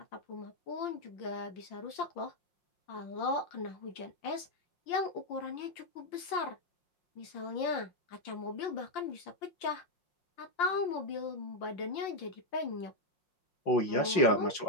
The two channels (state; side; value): late; right; 5.8 ms